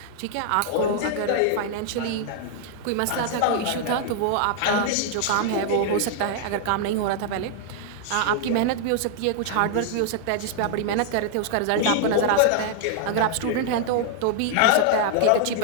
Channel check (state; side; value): different; both; correlation -0.01